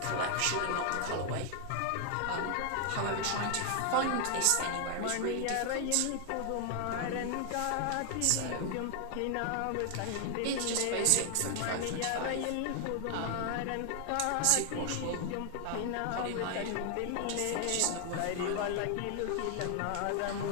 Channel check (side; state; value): both; different; correlation 0.00